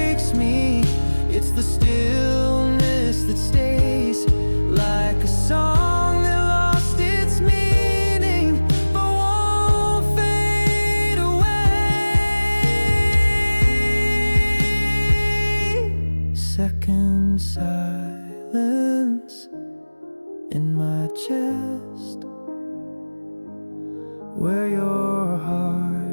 me, it's the stillness that stays, like a song that lost its meaning but won't fade away. Second silence in my chest, where your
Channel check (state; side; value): inverted; both; correlation -1.00